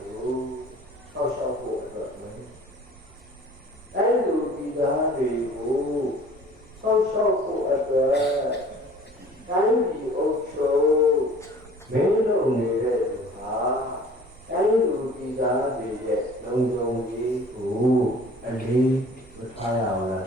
ကိုစောင့်ရှောက်ဖို့တော့မယ်အဲ့လိုဒီသားတွေကိုစောင့်ရှောက်ဖို့အတွက်တိုင်းပြည်အုပ်ချုပ်မင်းတို့နေတဲ့လူဟာတိုင်းလူပြည်သားတွေရဲ့လုံခြုံရေးကိုအလေးမထားရဘူးလား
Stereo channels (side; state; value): right; noise; rumble, 24 dB below the sound